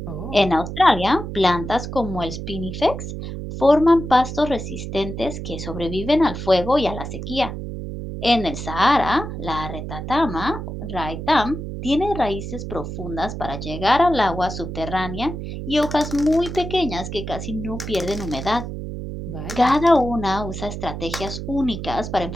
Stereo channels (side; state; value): right; noise; hum, 7 dB below the sound